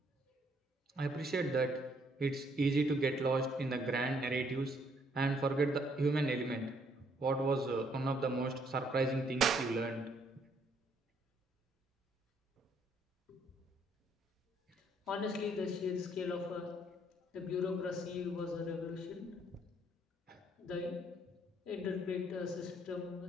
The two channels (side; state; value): both; normal; correlation 0.68